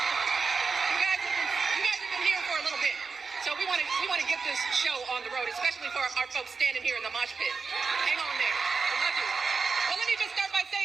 We want to get this show on the road, especially for our folks standing here in the mosh pit. Hang on there. I love you. Well, let me just start by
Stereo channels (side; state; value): left; quieter; 4.9 dB